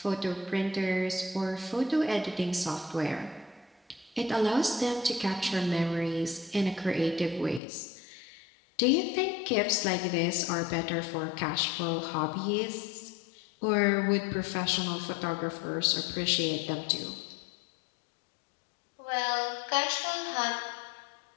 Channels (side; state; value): right; drops out; at 7.6 s